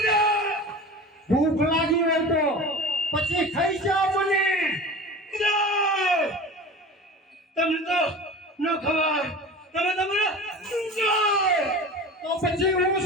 ભૂખ લાગી હોય તો પછી ખાઈ જાઓ મને. ગુરુદેવ તમને તો ન ખબર, તમે તમારે તો પછી હું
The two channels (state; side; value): normal; both; correlation 0.35